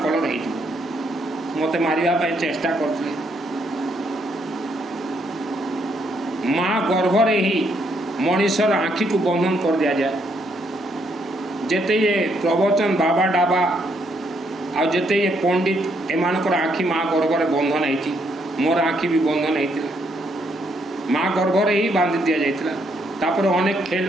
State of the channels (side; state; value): both; normal; correlation 0.73